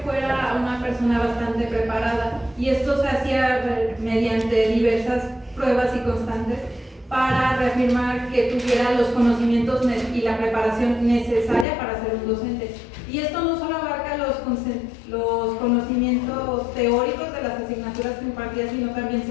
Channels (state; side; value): drops out; right; at 11.7 s